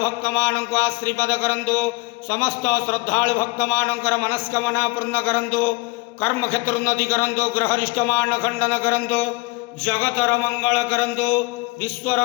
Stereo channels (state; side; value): quieter; right; 25.0 dB